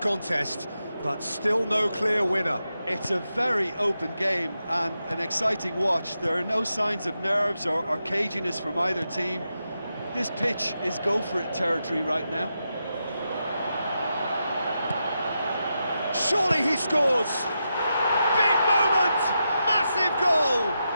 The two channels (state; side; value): inverted; both; correlation -0.87